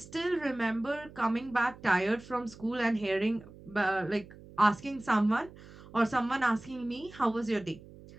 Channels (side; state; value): right; noise; hum, 19 dB below the sound